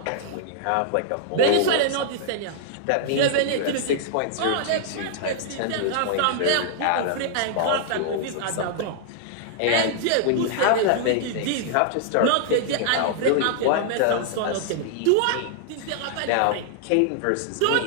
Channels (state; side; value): different; both; correlation -0.01